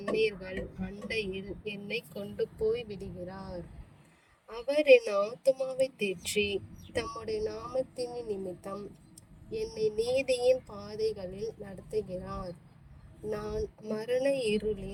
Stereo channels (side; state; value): both; identical; correlation 1.00